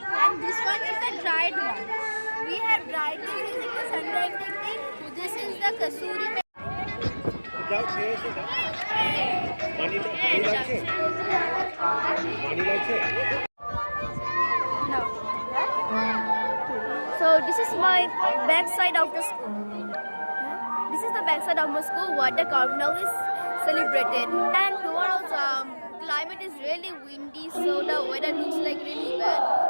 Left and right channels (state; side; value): inverted; both; correlation -1.00